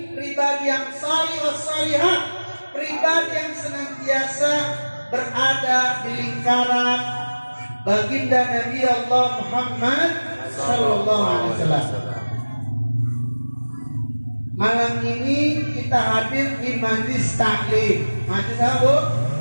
pribadi yang salih wassalihah, pribadi yang senantiasa berada di lingkaran baginda Nabi Allah Muhammad sallallahu alaihi wasallam. Malam ini kita hadir di majlis taklim. Majlis apa, Bu?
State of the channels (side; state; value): both; inverted; correlation -1.00